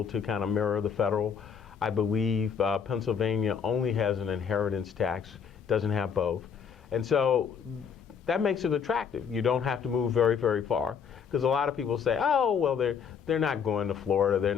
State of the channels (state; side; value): quieter; right; 7.0 dB